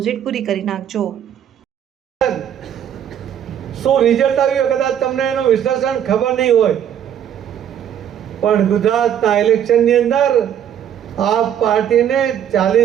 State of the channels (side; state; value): left; quieter; 9.6 dB